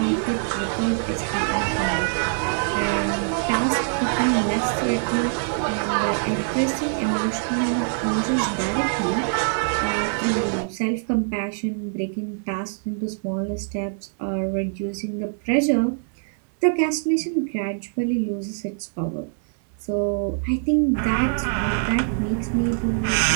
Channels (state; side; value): silent; left; 63 dB below the other